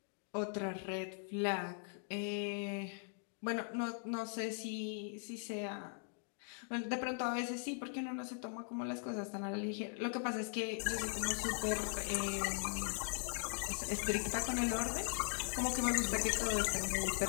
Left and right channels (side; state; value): right; silent; 51 dB below the other